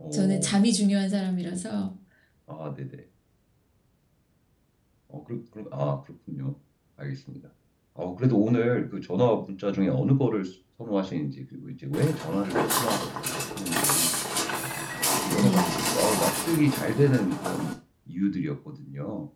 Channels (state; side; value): identical; both; correlation 1.00